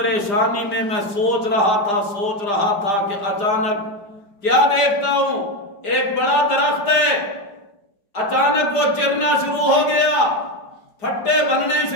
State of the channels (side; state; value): right; late; 4.9 ms